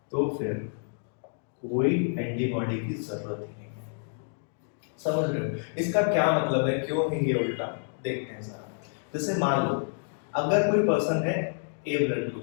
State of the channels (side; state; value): right; silent; digital silence